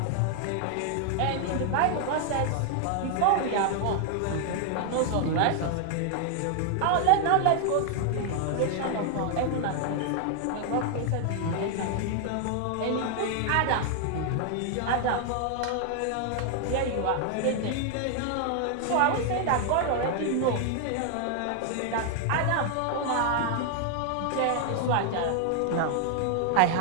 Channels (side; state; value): both; different; correlation 0.00